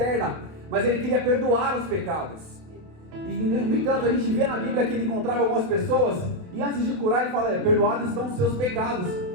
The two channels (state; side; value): late; left; 28 ms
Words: mas Ele queria perdoar os pecados. E no entanto, a gente vê na Bíblia que Ele encontrava algumas pessoas, e antes de curar Ele fala, perdoados estão os seus pecados.